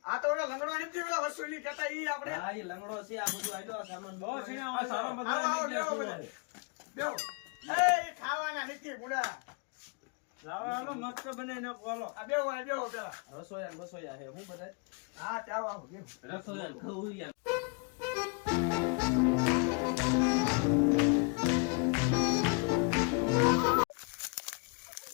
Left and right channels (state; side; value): quieter; right; 35.3 dB